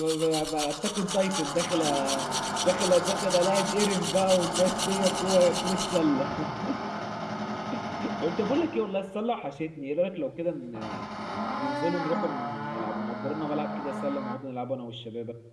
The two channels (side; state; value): both; identical; correlation 1.00